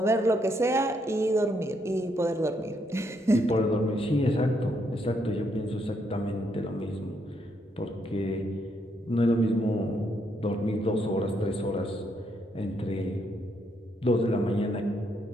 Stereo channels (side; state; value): both; normal; correlation 0.75